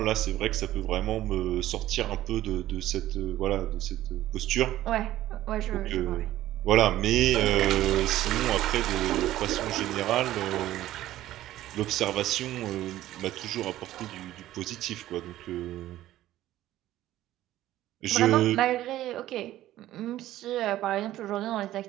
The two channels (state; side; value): quieter; left; 14.3 dB